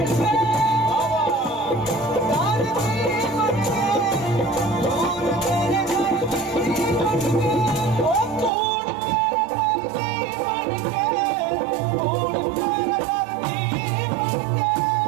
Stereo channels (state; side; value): drops out; left; at 8.5 s